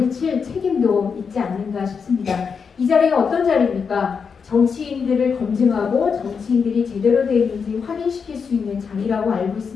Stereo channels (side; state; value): right; quieter; 5.9 dB